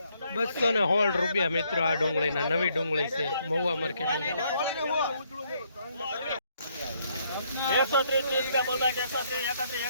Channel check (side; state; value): both; inverted; correlation -0.71